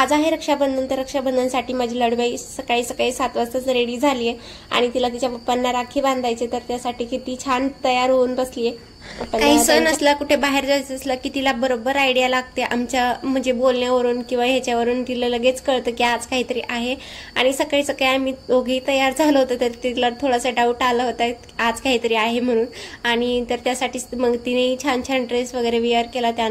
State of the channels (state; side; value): identical; both; correlation 1.00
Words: आहे रक्षाबंधन, तर रक्षाबंधनसाठी माझी लाडूबाई सकाळी 7 वाजताच रेडी झाली आहे आणि तिला तिच्या पप्पांना राखी बांधायचे, तर त्यासाठी किती छान तयार होऊन बसली आहे। काही सण असला, कुठे बाहेर जायचं असलं की तिला बरोबर आयडिया लागते, आमच्या म्हणजे बोलण्यावरून किंवा ह्याच्यावरून तिला लगेच कळतं की आज काहीतरी आहे। आणि सकाळी सकाळी आम्ही दोघेही तयार झालो होतो, तर तिला थोडासा डाऊट आला होता आज काहीतरी आहे म्हणून, आणि तर त्यासाठी मग तिने छान छान ड्रेस वगैरे वेअर केला।